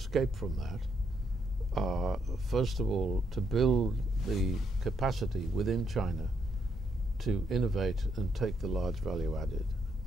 from that are, first of all, to build the capacity within China to innovate and take the large value added.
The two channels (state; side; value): normal; both; correlation 0.76